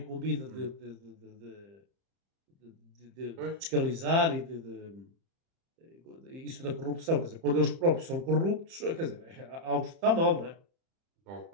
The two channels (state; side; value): late; left; 30 ms